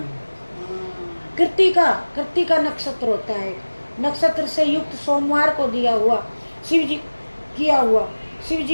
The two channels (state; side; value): inverted; both; correlation -1.00